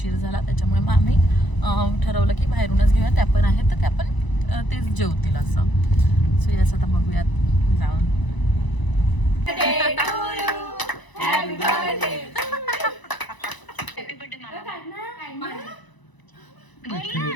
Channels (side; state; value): right; late; 1.0 ms